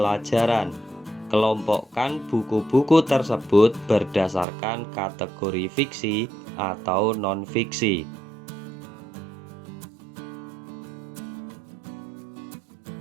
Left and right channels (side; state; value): left; drops out; at 4.5 s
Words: Kelompokkan buku-buku tersebut berdasarkan kategori fiksi atau non-fiksi.